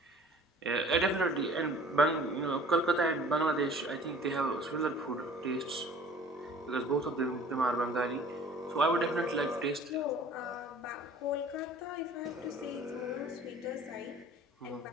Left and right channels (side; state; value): both; normal; correlation 0.49